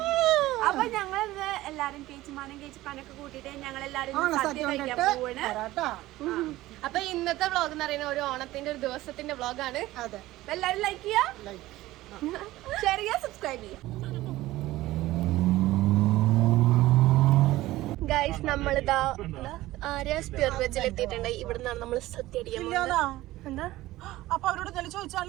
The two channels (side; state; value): left; quieter; 16.9 dB